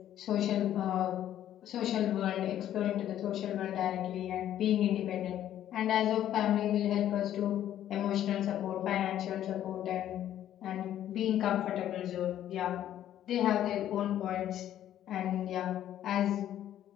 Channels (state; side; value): quieter; right; 11.5 dB